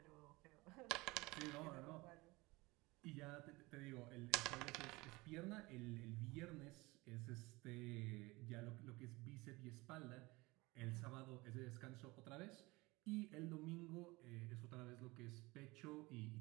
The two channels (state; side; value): quieter; left; 22.6 dB